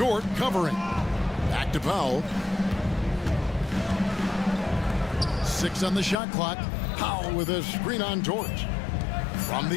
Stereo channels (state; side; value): drops out; right; at 6.2 s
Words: covering. Back to Powell. 6 on the shot clock. Powell with a screen on Dort. From